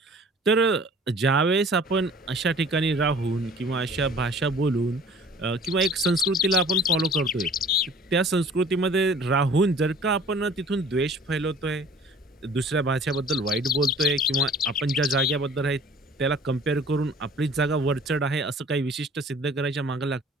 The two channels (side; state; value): both; normal; correlation 0.49